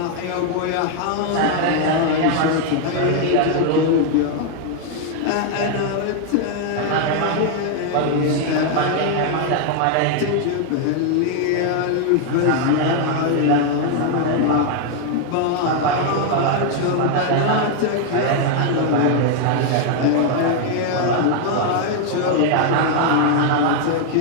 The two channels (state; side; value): different; both; correlation 0.00